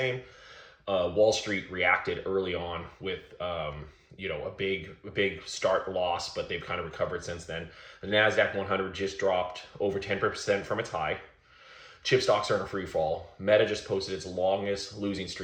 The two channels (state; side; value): identical; both; correlation 1.00